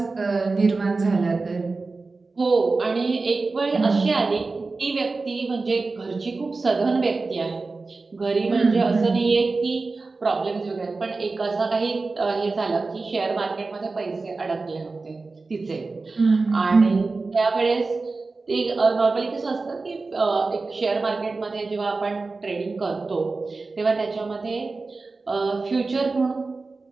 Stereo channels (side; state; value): left; quieter; 3.8 dB